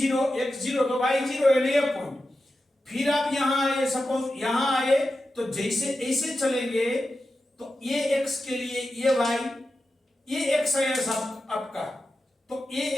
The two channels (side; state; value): both; normal; correlation 0.91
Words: x 0 तो y 0, ये पॉइंट। फिर आप यहां आए, सपोज यहां आए, तो जैसे ऐसे चलेंगे तो ये x के लिए ये y, ये x आया सब आपका, तो